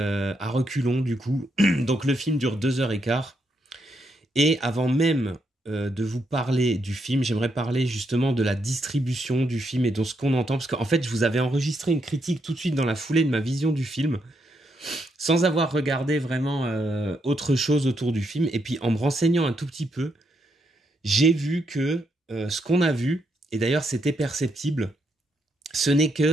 reculons, du coup. Donc le film dure 2h15. Et avant même de vous parler du film, j'aimerais parler justement de la distribution du film et de ce qu'on entend. Parce qu'en fait, je vous avais enregistré une critique tout de suite dans la foulée de ma vision du film, sans avoir regardé vraiment autre chose autour du film. Et puis en me renseignant un tout petit peu, j'ai vu que ce qu'on a vu, et d'ailleurs c'était perceptible, ce n'est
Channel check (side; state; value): both; normal; correlation 0.79